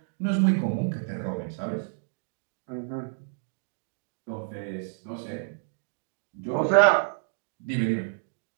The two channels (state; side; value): silent; left; digital silence